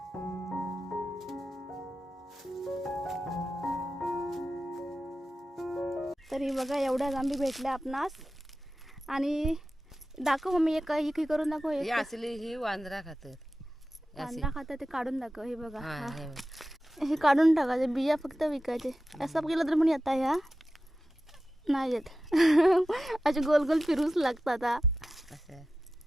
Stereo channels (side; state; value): both; normal; correlation 0.93